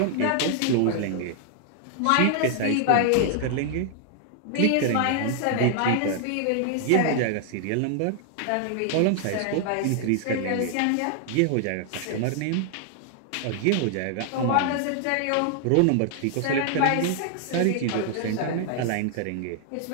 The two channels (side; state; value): both; different; correlation 0.00